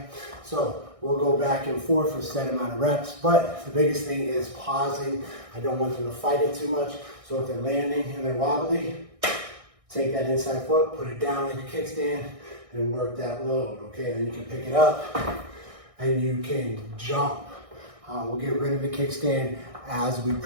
So we'll go back and forth for a set amount of reps, but the biggest thing is pausing. I don't want them to fight it too much. So if they're landing and they're wobbly, take that inside foot, put it down like a kickstand, and work that load, okay? Then you can pick it up and you can jump. We'll get rid of the kickstand as we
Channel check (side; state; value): left; late; 1.6 ms